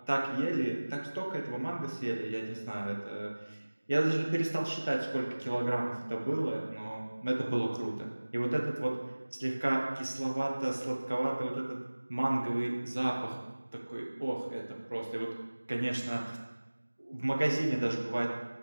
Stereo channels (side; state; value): both; inverted; correlation -1.00